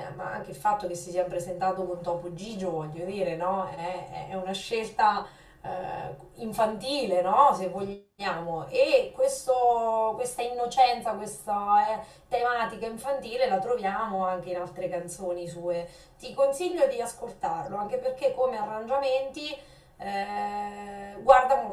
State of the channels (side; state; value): both; identical; correlation 1.00